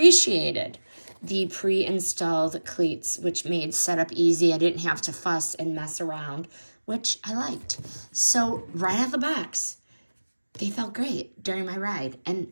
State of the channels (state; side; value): inverted; both; correlation -1.00